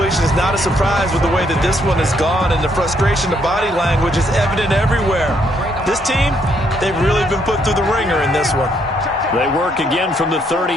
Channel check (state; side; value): normal; both; correlation 0.71